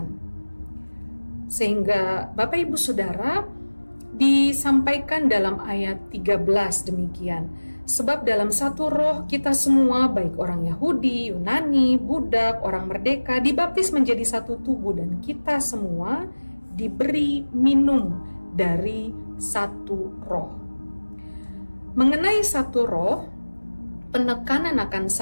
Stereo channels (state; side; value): inverted; both; correlation -1.00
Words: Sehingga Bapak Ibu Saudara, disampaikan dalam ayat 13 demikian. Sebab dalam satu roh kita semua, baik orang Yahudi, Yunani, budak, orang merdeka, dibaptis menjadi satu tubuh, dan kita semua diberi minum dari satu roh. Mengenai satu roh, penekanan akan